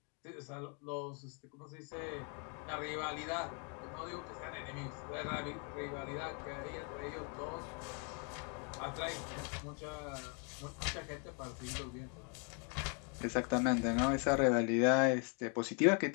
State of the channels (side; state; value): right; quieter; 37.7 dB